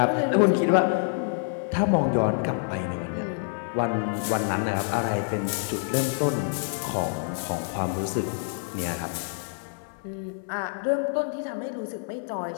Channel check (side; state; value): right; silent; 60 dB below the other